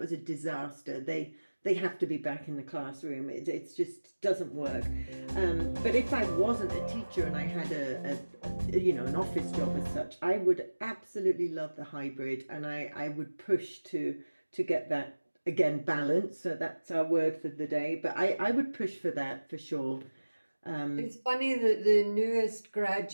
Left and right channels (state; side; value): inverted; both; correlation -1.00